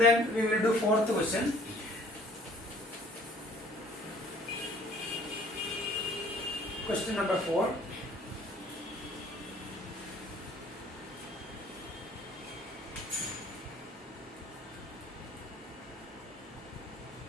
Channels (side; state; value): both; normal; correlation 0.55